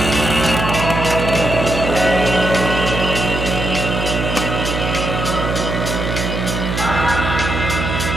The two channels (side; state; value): right; noise; hum, 3 dB below the sound